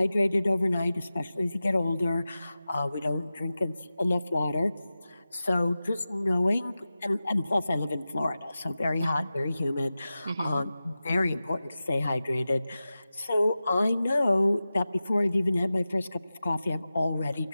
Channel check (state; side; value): inverted; both; correlation -0.95